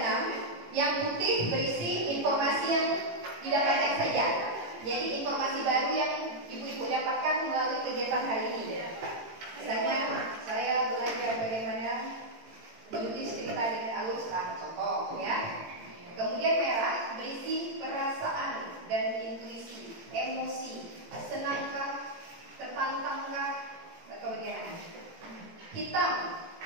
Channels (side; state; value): left; late; 18 ms